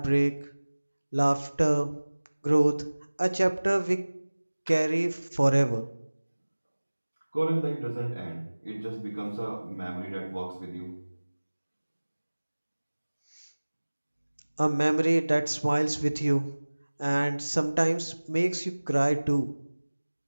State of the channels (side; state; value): both; inverted; correlation -1.00